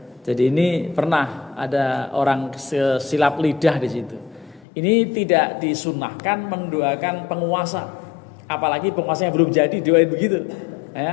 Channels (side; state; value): right; drops out; at 4.7 s